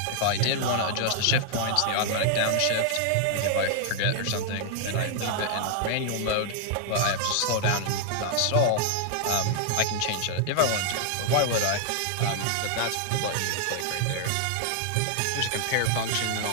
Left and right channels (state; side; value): different; both; correlation -0.01